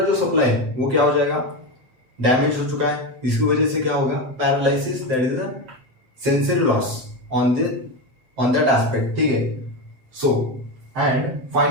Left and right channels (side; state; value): left; late; 7.8 ms